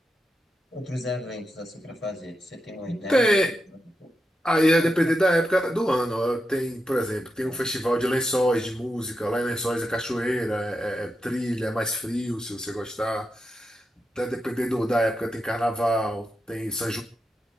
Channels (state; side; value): normal; both; correlation 0.87